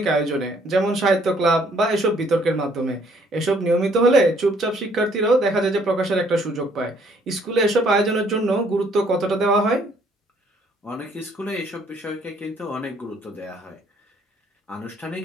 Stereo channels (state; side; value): normal; both; correlation 0.64